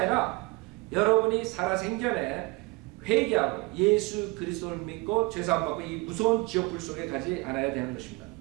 여러분이 살아생전에 회개하고 예수 그리스도를 믿고 죄사함 받고 이 무서운 지옥불 속에 가지 않아야 되는 것입니다.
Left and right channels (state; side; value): quieter; left; 25.0 dB